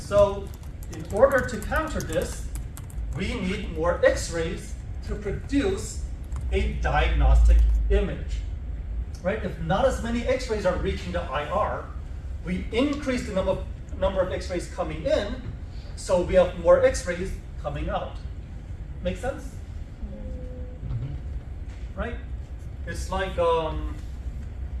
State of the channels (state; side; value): identical; both; correlation 1.00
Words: so, in order to counter this, we need more X-rays to produce a diagnostic image. Right? If not as many X-rays are reaching the IR, we increase the number of X-rays coming in, so we have more X-rays coming out. Make sense? Mm-hmm. Right? It's like,